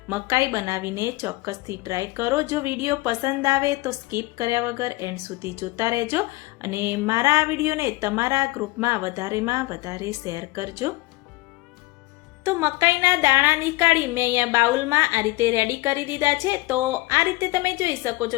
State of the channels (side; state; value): right; quieter; 21.1 dB